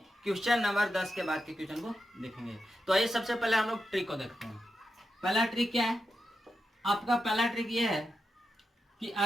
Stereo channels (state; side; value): normal; both; correlation 0.88